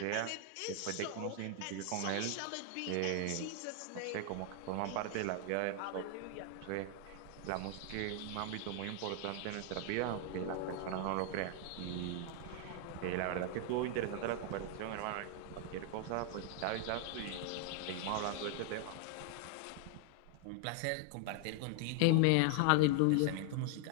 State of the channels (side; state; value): both; different; correlation 0.00